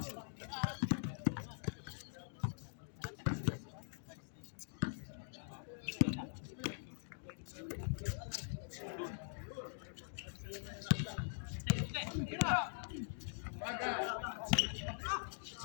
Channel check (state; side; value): silent; right; digital silence